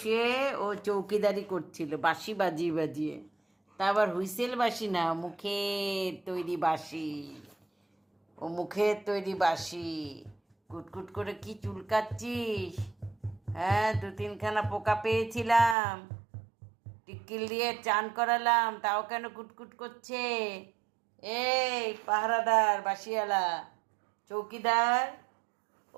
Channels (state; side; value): drops out; left; at 15.8 s